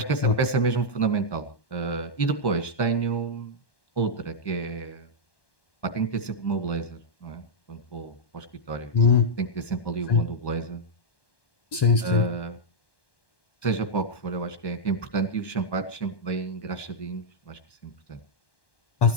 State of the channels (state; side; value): late; right; 1.2 ms